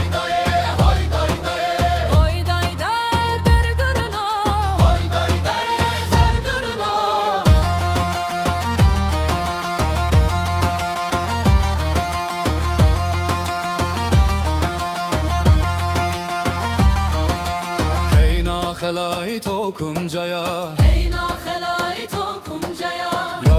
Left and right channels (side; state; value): both; identical; correlation 1.00